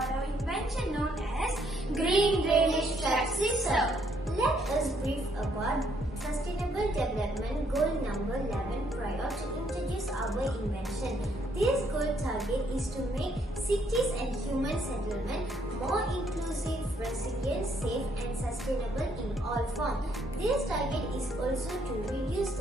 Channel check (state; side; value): normal; both; correlation 0.70